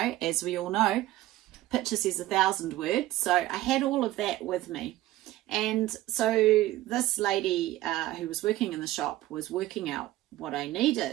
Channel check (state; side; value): quieter; left; 15.8 dB